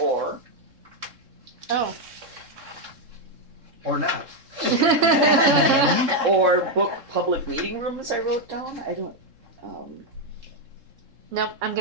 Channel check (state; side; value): late; left; 3.7 ms